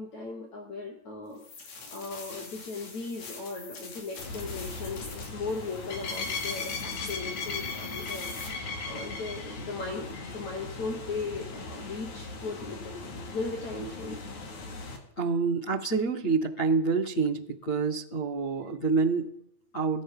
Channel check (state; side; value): late; right; 9.0 ms